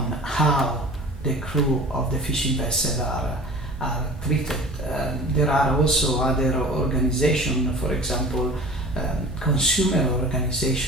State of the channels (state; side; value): normal; both; correlation 0.41